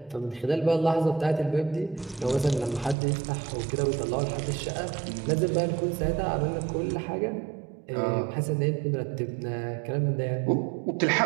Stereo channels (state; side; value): drops out; left; at 3.0 s